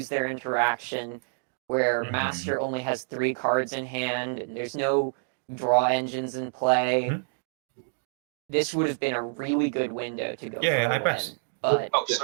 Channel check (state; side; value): silent; left; digital silence